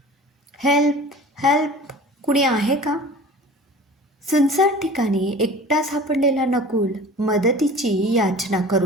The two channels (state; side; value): normal; both; correlation 0.41